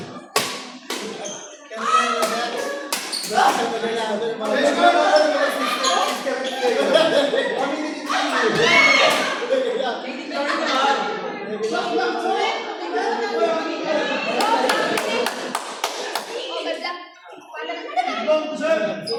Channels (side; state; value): both; identical; correlation 1.00